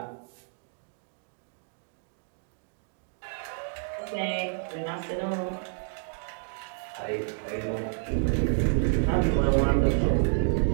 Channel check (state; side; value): silent; left; digital silence